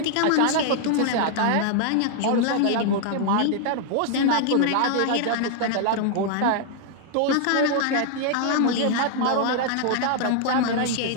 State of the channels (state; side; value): different; both; correlation 0.00